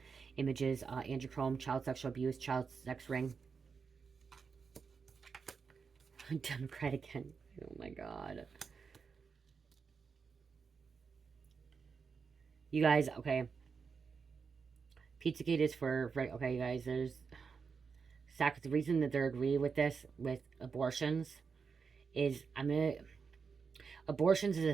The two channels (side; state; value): left; quieter; 5.5 dB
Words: images, Andrew Cuomo, child sexual abuse, child sex ring. Democrat again. Oh my God. You guys, okay. Pizzagate is for, right, okay, you guys, there's, the reason that they're agreeing with this, with abortions, is, abortions is a